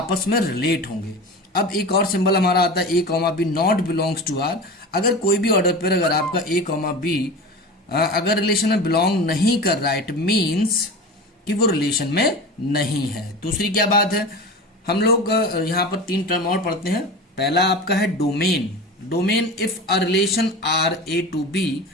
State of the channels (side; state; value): both; normal; correlation 0.31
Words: में रिलेट होंगे। अब एक और सिंबल हमारा आता है A comma B not belongs to R. अगर कोई भी ऑर्डर पेयर अगर आपका ए कॉमा बी अगर रिलेशन में बिलोंग नहीं कर रहा है, इट मीन्स कि वो रिलेशन में नहीं है। दूसरी क्या बात है, हम लोग यहाँ पर तीन टर्म और पढ़ते हैं। पहला आपका है domain. Domain if a relation R A to B